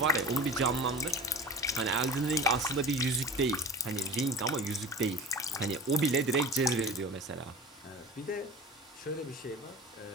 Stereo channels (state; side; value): normal; both; correlation 0.35